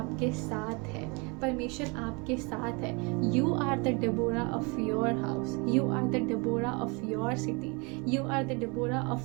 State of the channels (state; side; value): quieter; left; 30.1 dB